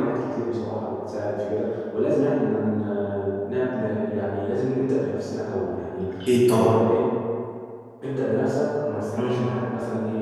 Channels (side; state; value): both; identical; correlation 1.00